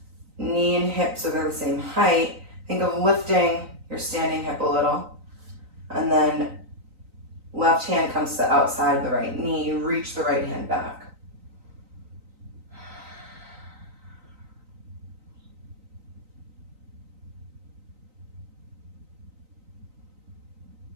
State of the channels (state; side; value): late; left; 3.9 ms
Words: knee and hip so they're the same height. Think of lifting your standing hip a little. And then left hand comes to the outside of the right knee. You reach the right hand back.